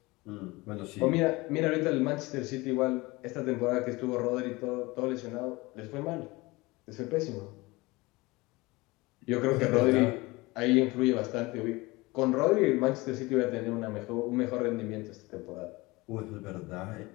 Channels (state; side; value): quieter; right; 22.5 dB